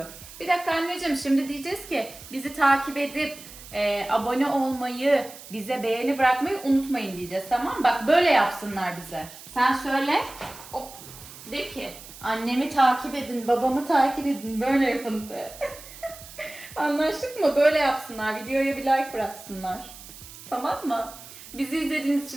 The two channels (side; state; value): right; noise; hiss, 16 dB below the sound